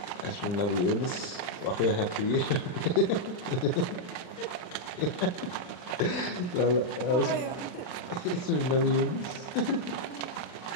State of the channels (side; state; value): right; late; 39 ms